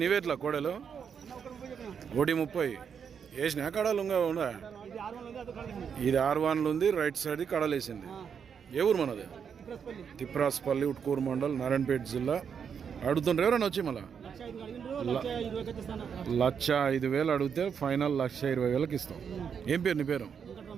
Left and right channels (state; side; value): quieter; left; 7.1 dB